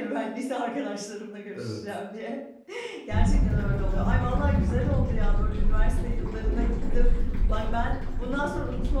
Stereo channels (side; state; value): both; identical; correlation 1.00